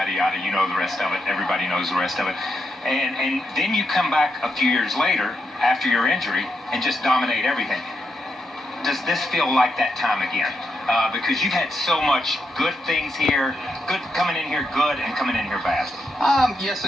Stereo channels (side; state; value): both; normal; correlation 0.83